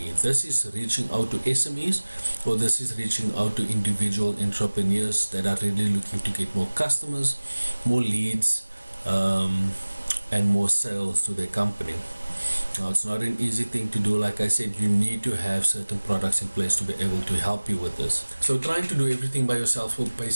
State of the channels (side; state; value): both; inverted; correlation -1.00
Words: This is reaching out to SMEs, or this is reaching out to individual entrepreneurs that are really looking to get more customers, more leads, and more sales to their company. Now, it's not an easy thing to do. Like I said, you need to have certain products in place to be able to help you with this. So trying to do everything by yourself will